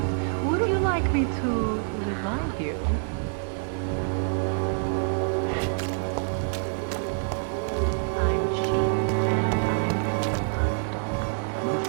Would you like me to revive you? I'm cheap and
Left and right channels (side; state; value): left; silent; digital silence